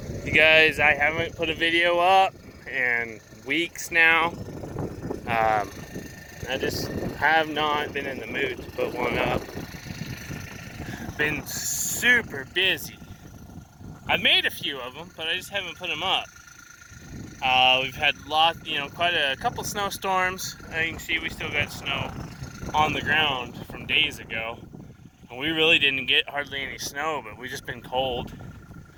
You guys, I haven't put a video up in weeks now. I just have not been in the mood to put one up. Been super busy. I've made a few of them, but I just haven't put them up. We've had quite a couple snowstorms. As you can see, we still got snow on the ground from days ago. And we really didn't get hardly any snow, but we've just been cold.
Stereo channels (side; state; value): both; identical; correlation 1.00